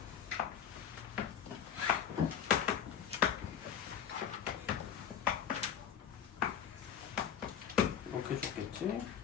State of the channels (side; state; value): right; quieter; 8.6 dB